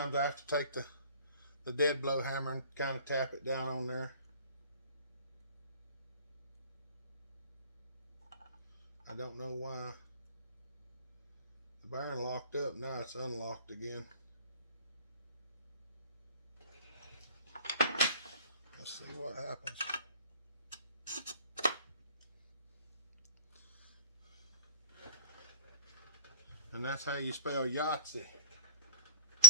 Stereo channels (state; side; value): inverted; both; correlation -0.44